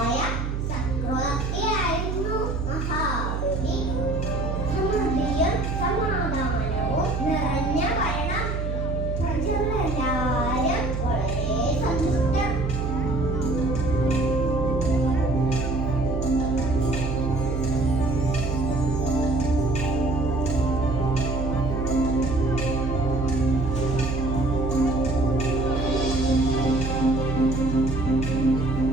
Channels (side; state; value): right; noise; hum, 2 dB below the sound